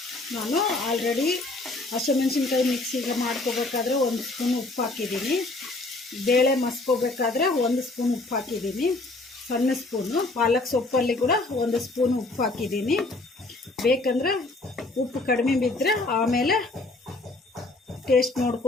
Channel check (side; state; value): right; quieter; 3.0 dB